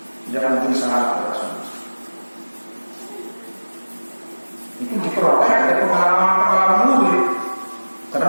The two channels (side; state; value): both; inverted; correlation -1.00